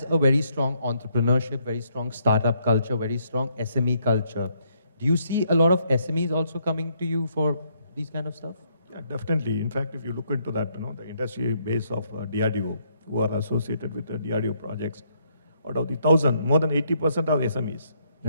a very strong entrepreneurship, very strong startup culture, very strong SME culture. Do you see a lot of SMEs also coming to you for these kind of stuff? Yeah, definitely. In fact, if you look into that, the industry base of DRDO, who are associated with the DRDO projects, out of the 1,000, more than 80% are SMEs.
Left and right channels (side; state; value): both; inverted; correlation -0.72